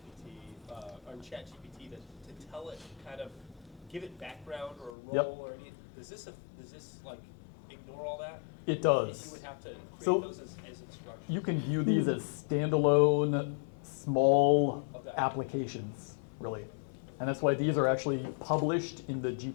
Are on ChatGPT to tell it, kind of give it background or a Yep. role or any, does this like ignore all that? It does. You would have to create So- those as instructions. You can view these as standalone, small Okay. applications, really. And that's why these are actually published in the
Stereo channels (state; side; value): drops out; right; at 4.9 s